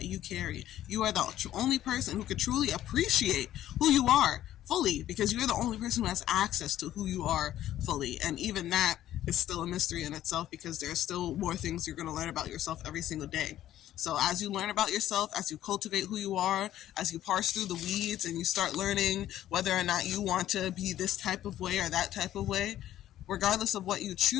you carry. You are the only person who can truly appreciate who you are fully, because you're the only person who has access to who you are fully. And even that is still a mystery in itself, because there's still more things you're going to learn about yourself every single day. So as you learn about yourself, as you cultivate who you are, as you parse through the weeds and you start learning whether or not you want to be this type of way or that type of way, regardless of what you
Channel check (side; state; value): right; quieter; 12.7 dB